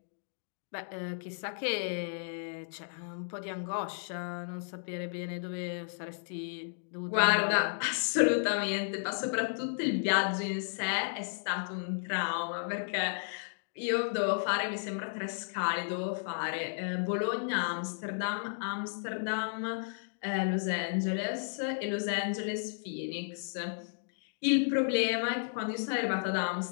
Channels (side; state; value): right; silent; digital silence